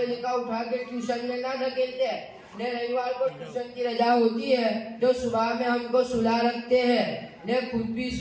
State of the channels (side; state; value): both; identical; correlation 1.00